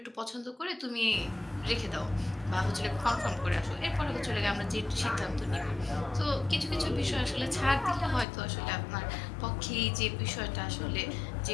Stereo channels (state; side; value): drops out; right; at 8.2 s